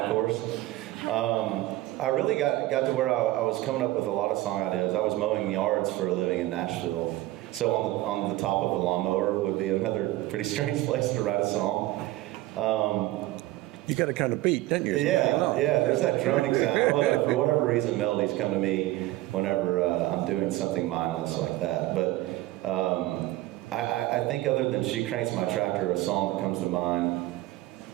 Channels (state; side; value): quieter; left; 17.0 dB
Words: I really got to where I was coming up with a lot of song ideas. I was mowing yards for a living in Nashville. So on the top of a lawnmower would be another pretty strange place to write a song. You got a kind of beat, don't you? Yeah, there's that droning sound. Well, for whatever reason, melodies come to me whenever I'm doing something mindless like that. But I think other than She Cranks My Tractor, a song that comes to mind